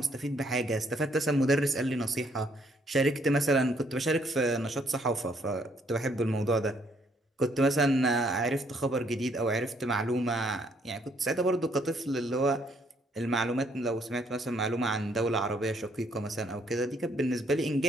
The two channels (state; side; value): normal; both; correlation 0.68